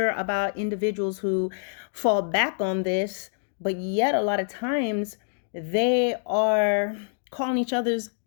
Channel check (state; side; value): silent; right; digital silence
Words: about individuals who fall back on this, but yet a lot of times they are calling each other's